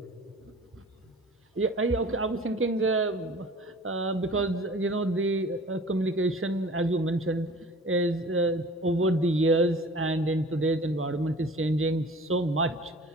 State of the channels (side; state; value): both; normal; correlation 0.45